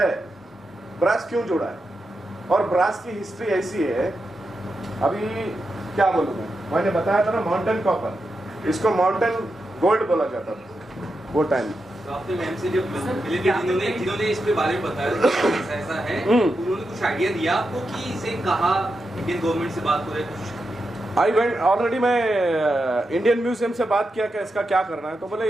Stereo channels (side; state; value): both; normal; correlation 0.87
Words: ब्रास क्यों जुड़ा है? और ब्रास की हिस्ट्री ऐसी है, अभी क्या बोलूं मैंने बताया था ना, माउंटेन कॉपर, इसको माउंटेन गोल्ड बोला जाता था वो टाइम। तो आपने मैम से जब मिले थे, जिन्होंने इस पे बारे में बताया कि ऐसा है, उन्होंने कुछ आइडिया दिया आपको कि इसे कहा इंडियन गवर्नमेंट से बात हो रही है कुछ? आई वेंट ऑलरेडी, मैं इंडियन म्यूजियम से बात किया कि इसका क्या करना है, तो बोले